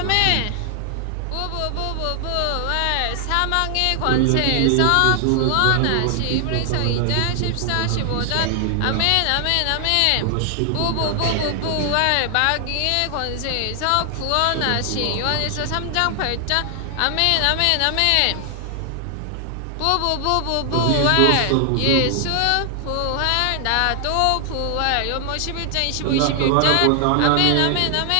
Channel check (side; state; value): both; different; correlation 0.00